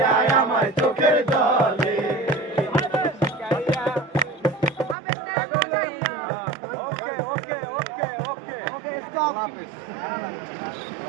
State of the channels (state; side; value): drops out; left; at 5.0 s